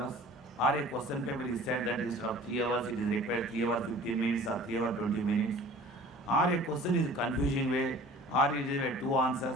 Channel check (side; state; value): both; normal; correlation 0.46